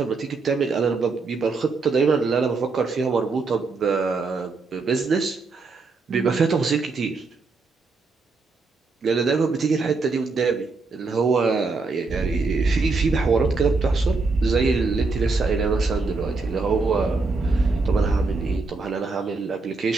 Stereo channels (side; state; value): left; quieter; 4.0 dB